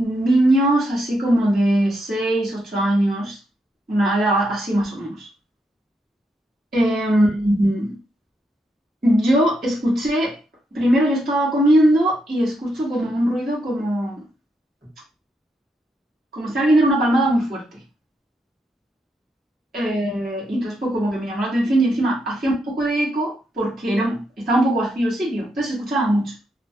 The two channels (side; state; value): both; normal; correlation 0.81